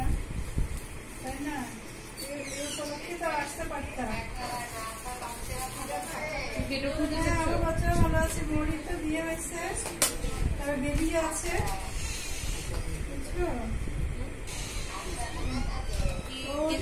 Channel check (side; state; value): both; identical; correlation 1.00